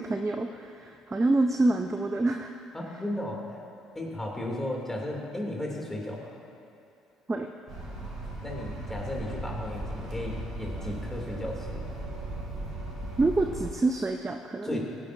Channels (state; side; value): normal; both; correlation 0.87